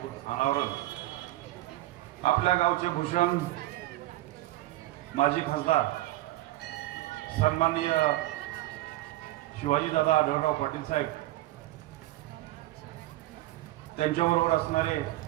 अनावरण आपल्या गावचे भूषण माजी खासदार सन्माननीय शिवाजीदादा आढळराव पाटील साहेब त्यांच्याबरोबर असणारे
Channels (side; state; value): left; quieter; 16.8 dB